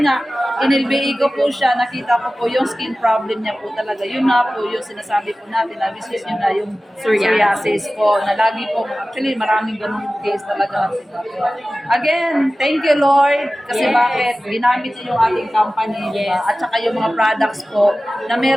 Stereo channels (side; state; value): both; normal; correlation 0.96